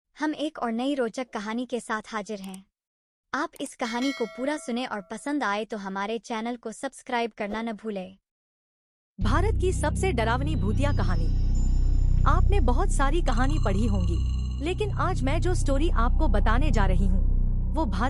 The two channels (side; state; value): both; identical; correlation 1.00